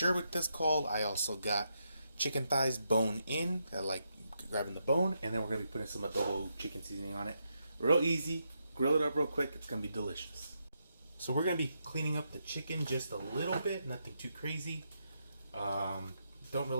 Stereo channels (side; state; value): both; inverted; correlation -0.82